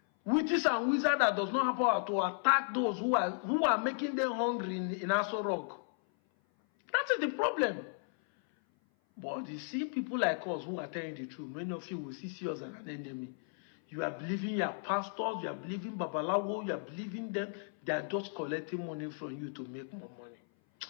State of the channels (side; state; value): right; silent; 55 dB below the other